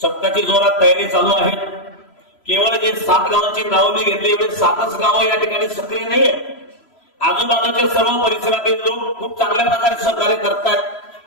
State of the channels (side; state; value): right; late; 3.0 ms